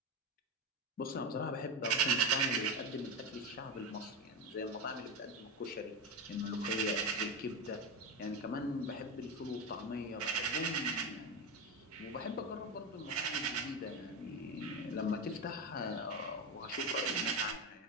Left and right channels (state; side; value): normal; both; correlation 0.16